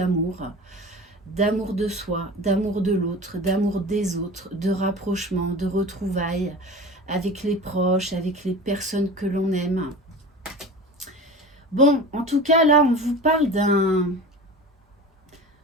de soi, d'amour de l'autre, d'amour des autres, de rapprochement, de retrouvailles avec les proches, avec les personnes que l'on aime. Bon, en tout cas, là, on vous parle d'un...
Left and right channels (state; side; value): normal; both; correlation 0.35